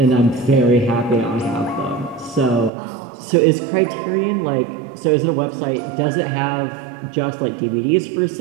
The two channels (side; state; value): left; drops out; at 2.7 s